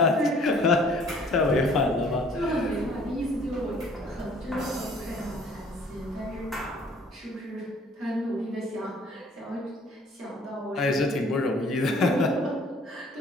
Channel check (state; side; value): normal; both; correlation 0.55